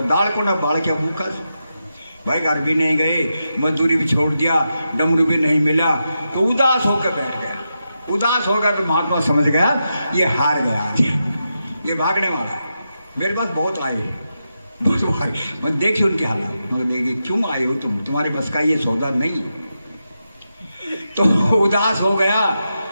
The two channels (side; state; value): both; inverted; correlation -0.87